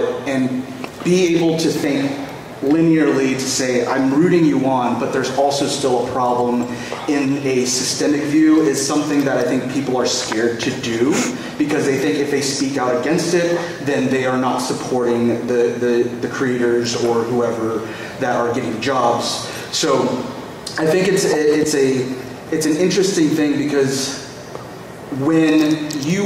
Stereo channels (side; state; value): both; identical; correlation 1.00